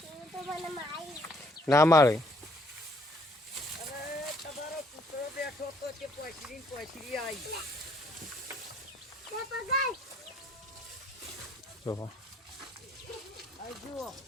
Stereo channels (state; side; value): normal; both; correlation 0.64